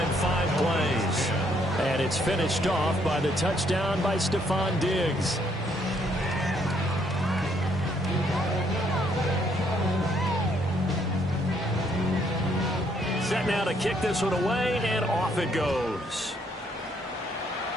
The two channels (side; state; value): both; normal; correlation 0.70